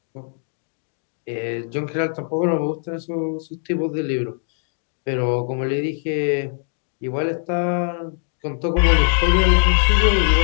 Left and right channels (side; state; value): right; silent; 65 dB below the other